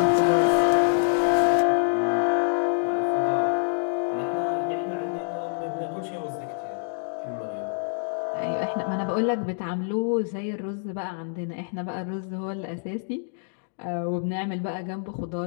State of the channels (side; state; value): right; silent; digital silence